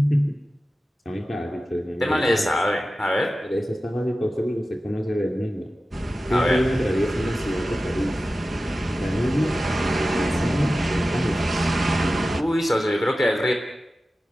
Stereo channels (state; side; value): normal; both; correlation 0.95